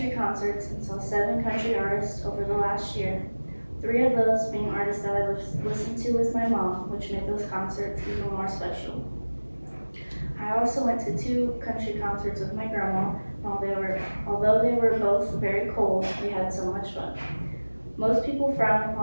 concerts and saw 7 country artists over the last year. 3 of those being artists that I listened to with my mom, which made those concerts even more special. I also went to 2 country concerts with my grandma. Although they were both very cold, we had so much fun. Most people frown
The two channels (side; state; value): both; inverted; correlation -1.00